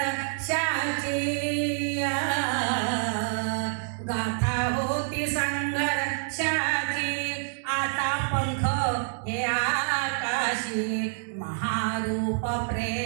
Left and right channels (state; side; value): silent; left; digital silence